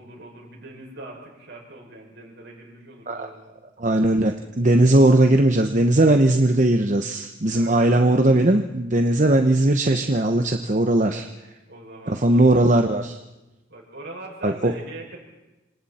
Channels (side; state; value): both; normal; correlation 0.67